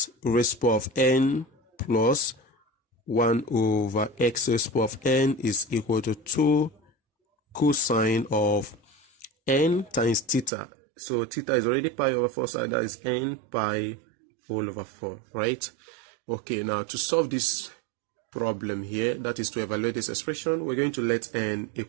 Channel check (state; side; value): drops out; left; at 10.5 s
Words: raised to the power of n plus 1 over x raised to the power of n is equal to 2 cosine of n times theta. So theta is already pi over 4, so that is n pi all over 4, right? Okay, now to solve this problem here, that is to evaluate this expression, we're going to let n